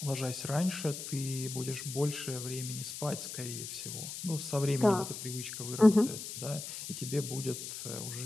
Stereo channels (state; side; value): noise; left; hiss, 8 dB below the sound